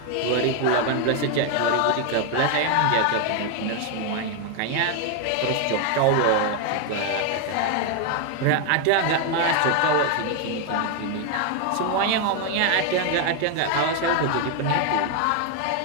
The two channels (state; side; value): different; both; correlation 0.01